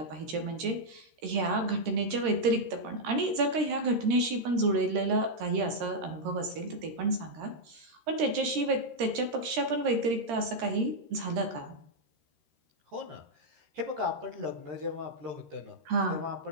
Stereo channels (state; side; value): late; left; 13 ms